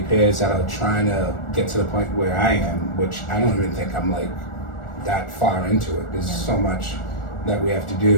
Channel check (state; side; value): late; right; 1.4 ms